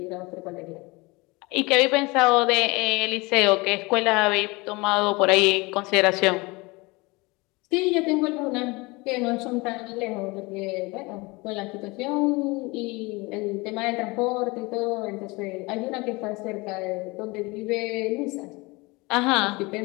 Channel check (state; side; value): quieter; right; 24.7 dB